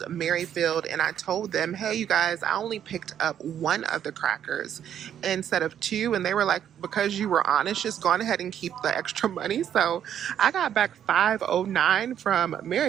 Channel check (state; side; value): quieter; left; 9.7 dB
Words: Merrifield and I told them, hey, you guys, I only picked up 1 of the crackers instead of 2. And they were like, because you were honest, just go on ahead and keep the extra money. So I got back $5.09 from